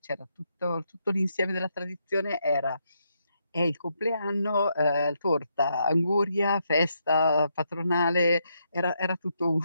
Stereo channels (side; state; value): both; inverted; correlation -0.78